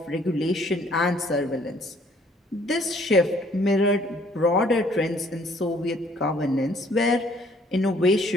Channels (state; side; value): normal; both; correlation 0.61